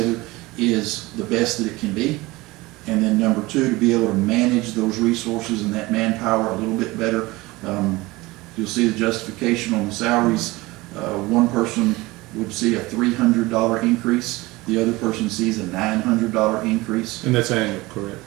is the best that it can be. And then number 2, to be able to manage those resources and that manpower a little bit better. you'll see the justification on the salaries. One person would see a $300 increase, the other person sees a $900 increase. And that's annual, correct?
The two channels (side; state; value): left; quieter; 21.1 dB